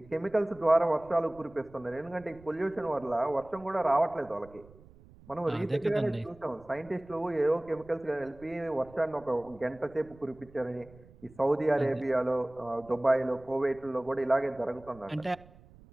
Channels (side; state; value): right; noise; rumble, 23 dB below the sound